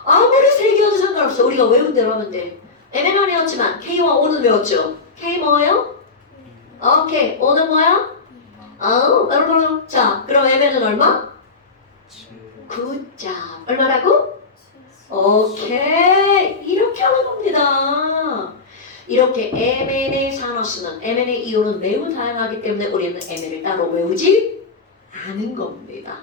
아무리 세 개여도 상관없어. 우리가 외운 대로 하면 돼. Mn은 외웠지만 K와 O는 외웠죠. K 뭐예요? 오케이. O는 뭐야? 자, 그럼 Mn은 얼마? 9점. 얼마라고? 오케이. 이렇게 하는 겁니다. 이렇게 Mn의 산화수는 Mn의 이온은 매우 다양하기 때문에 우리는 Mn을 따로 외우지 않은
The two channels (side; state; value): right; quieter; 4.1 dB